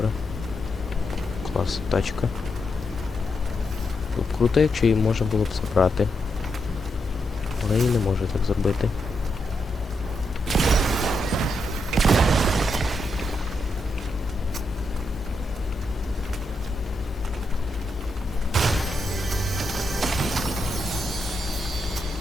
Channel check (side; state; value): both; normal; correlation 0.83